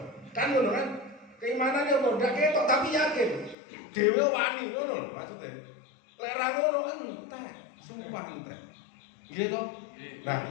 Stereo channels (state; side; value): drops out; right; at 3.6 s